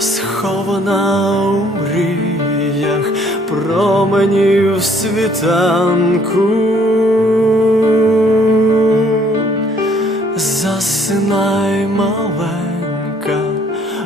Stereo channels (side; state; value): both; normal; correlation 0.62